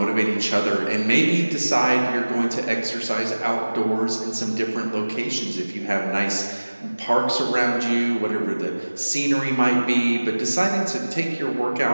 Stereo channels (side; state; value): both; inverted; correlation -1.00